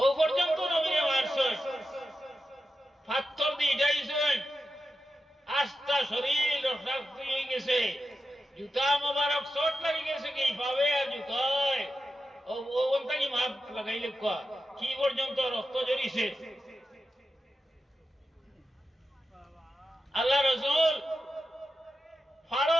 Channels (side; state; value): both; normal; correlation 0.90